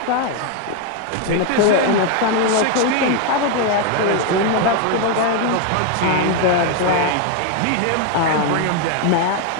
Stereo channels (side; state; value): both; different; correlation 0.01